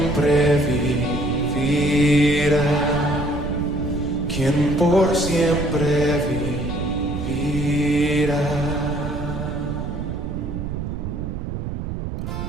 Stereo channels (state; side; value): noise; right; rumble, 5 dB below the sound